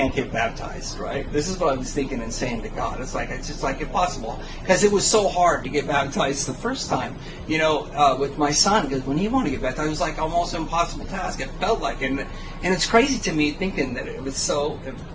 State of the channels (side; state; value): both; identical; correlation 1.00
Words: get baptized, right? This is what I was thinking and saying to God. It's just like impossible, because it was so hard to get baptized the first time, with my son, because when he wanted to get baptized, it was like almost an impossible task. It felt like, and it's crazy to me thinking that it